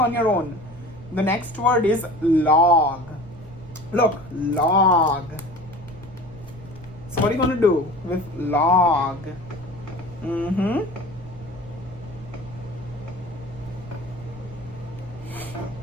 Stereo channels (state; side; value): noise; right; rumble, 17 dB below the sound